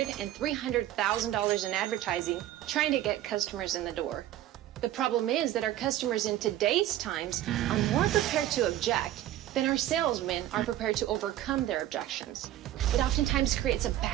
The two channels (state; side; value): quieter; left; 13.3 dB